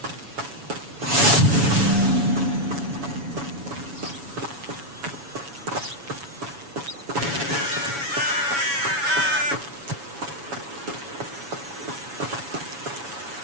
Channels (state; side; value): late; left; 7.1 ms